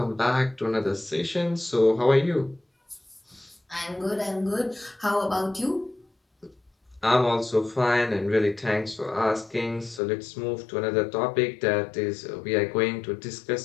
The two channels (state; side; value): drops out; right; at 10.0 s